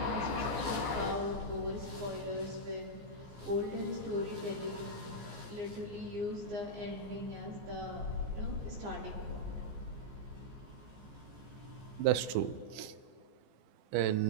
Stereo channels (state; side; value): late; left; 14 ms